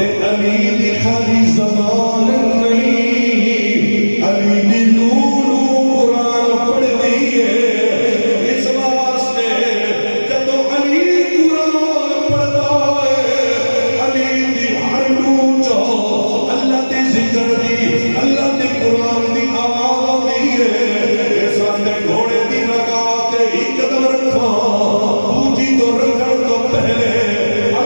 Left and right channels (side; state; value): both; inverted; correlation -1.00